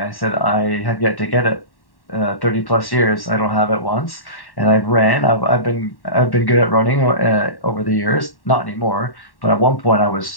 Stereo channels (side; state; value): right; late; 1.1 ms